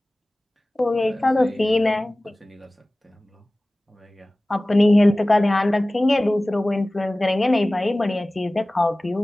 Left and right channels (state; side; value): normal; both; correlation 0.98